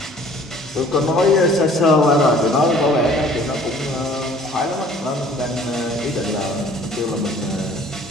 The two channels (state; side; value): normal; both; correlation 0.53